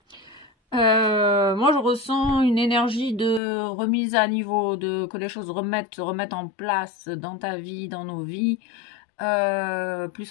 Moi, je ressens une énergie de remise à niveau, que les choses remettent en place dans ta vie, dans nos vies,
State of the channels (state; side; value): drops out; right; at 3.4 s